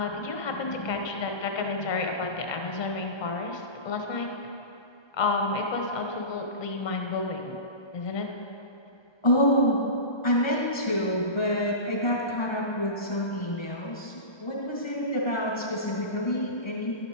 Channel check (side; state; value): right; late; 1.2 ms